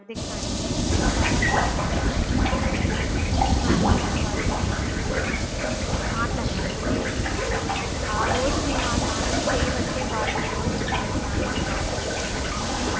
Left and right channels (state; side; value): identical; both; correlation 1.00